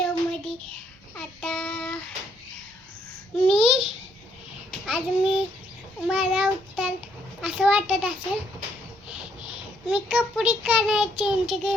आता मला उत्तर असं वाटत असेल, मी कपडे चेंज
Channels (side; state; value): both; normal; correlation 0.71